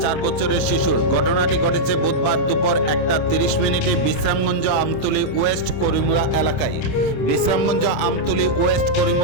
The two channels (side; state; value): right; late; 26 ms